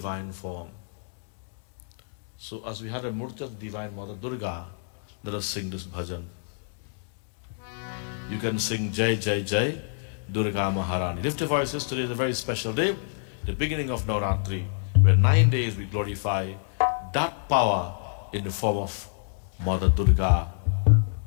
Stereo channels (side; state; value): right; silent; digital silence